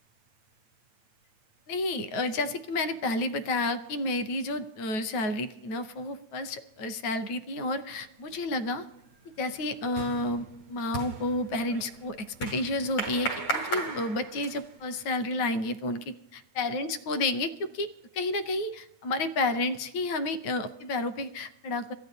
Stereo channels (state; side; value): late; right; 9.3 ms